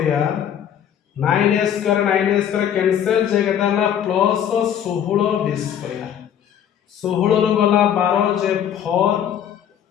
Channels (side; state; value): right; quieter; 9.4 dB